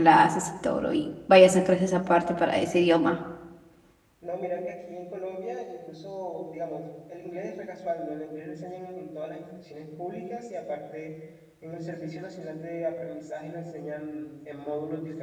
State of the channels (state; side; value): identical; both; correlation 1.00